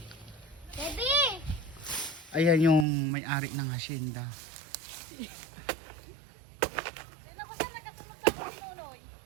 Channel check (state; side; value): drops out; left; at 2.9 s